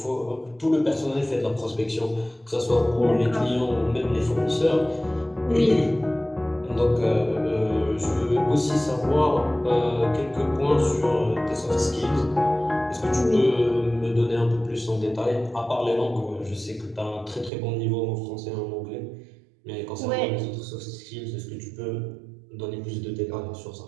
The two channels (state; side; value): drops out; left; at 17.5 s